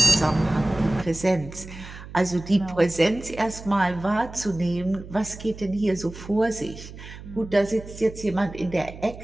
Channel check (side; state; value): right; noise; hum, 14 dB below the sound